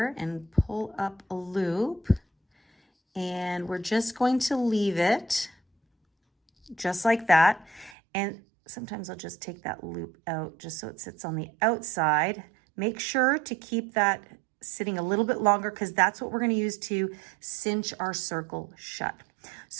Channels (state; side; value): drops out; left; at 8.0 s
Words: and pull up a loop. And we're just going to leave it just like that. And sometimes I'll just take that loop out just so it sits on the outside. Make sure to keep that sitting a little bit longer because that's what we're going to use to cinch our circle shut.